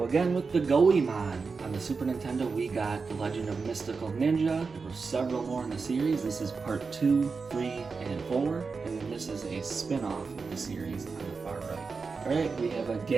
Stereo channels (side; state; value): left; quieter; 4.7 dB